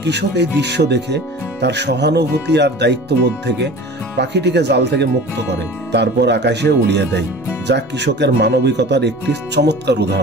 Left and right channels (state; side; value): normal; both; correlation 0.39